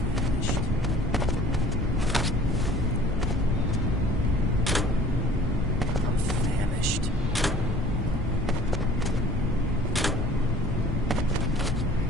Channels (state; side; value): normal; both; correlation 0.50